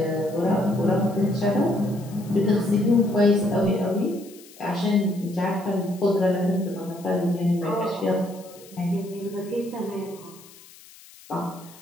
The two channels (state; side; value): noise; left; hiss, 22 dB below the sound